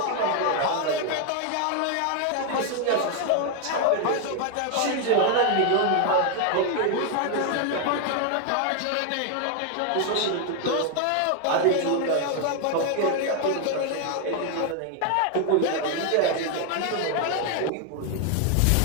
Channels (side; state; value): both; different; correlation 0.01